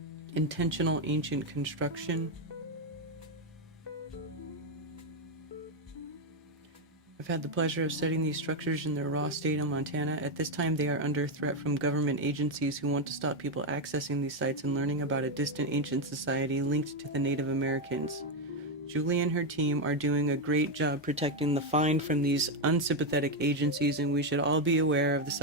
Intentional ancient construction. I've had the pleasure of studying these structures in their raw state in Montana. At this time, they are under threat from government agencies who want to stop people accessing these sites and learning about a distant ancient society linked to the Native Americans. Julie and her team are doing a great job protecting the find from these unsympathetic agencies, and we should all be aware of the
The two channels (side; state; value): both; normal; correlation 0.05